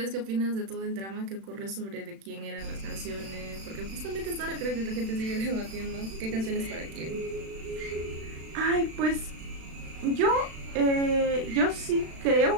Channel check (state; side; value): late; left; 36 ms